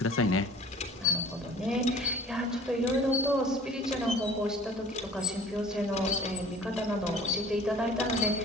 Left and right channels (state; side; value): normal; both; correlation 0.47